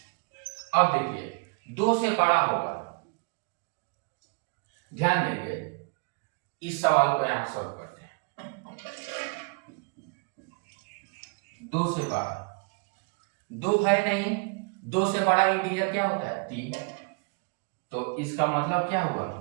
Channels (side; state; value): left; quieter; 34.4 dB